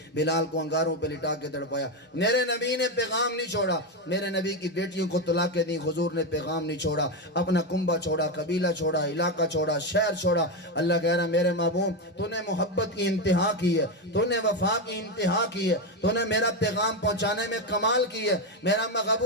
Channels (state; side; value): normal; both; correlation 0.10